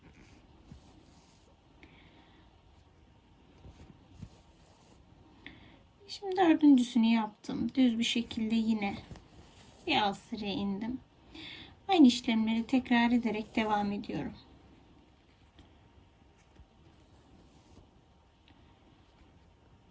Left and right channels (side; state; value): both; identical; correlation 1.00